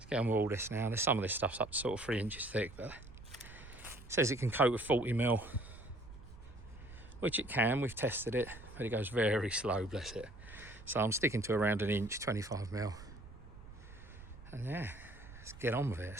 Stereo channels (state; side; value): noise; right; rumble, 16 dB below the sound